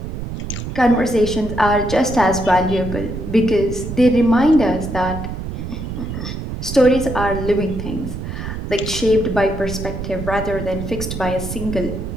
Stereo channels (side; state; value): right; noise; rumble, 6 dB below the sound